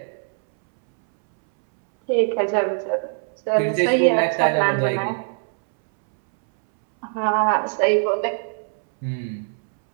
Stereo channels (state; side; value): silent; left; 64 dB below the other